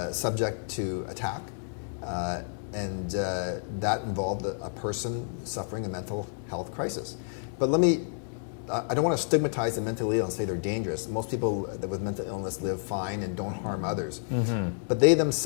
subject to attack, and that involved a person suffering a mental health crisis. But I don't want to stigmatize the mentally ill and say they're dangerous. Most people with mental illness live fine and don't harm others. But they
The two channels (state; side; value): silent; right; digital silence